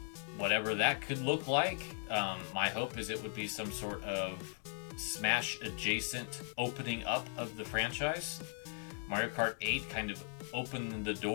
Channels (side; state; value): right; silent; 52 dB below the other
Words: whatever that could look like. My hope is it would be some sort of Smash adjacent opening up of the franchise. Mario Kart 8 kind of opened the